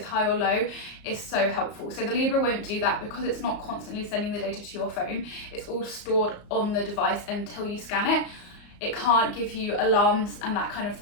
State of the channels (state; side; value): late; right; 34 ms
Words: high or low is so helpful. So the Libre won't do that because it's not constantly sending the data to your phone. It's all stored on the device until you scan it. It can't give you alarms and that kind of